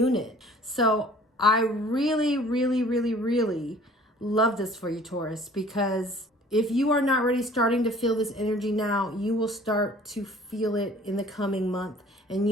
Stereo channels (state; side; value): normal; both; correlation 0.51